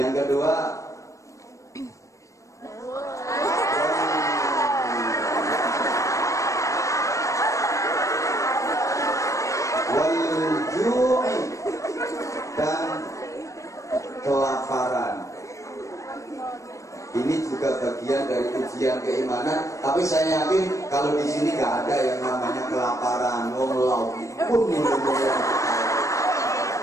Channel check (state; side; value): late; right; 0.15 ms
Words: kedua, wal-ju'i, dan kelaparan. Ini juga bagian dari ujian keimanan. Tapi saya yakin kalau di sini nggak ada yang namanya kelaparan. Wong lauk pun